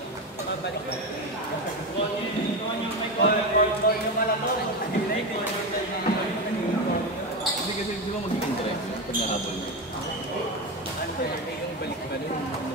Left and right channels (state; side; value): normal; both; correlation 0.17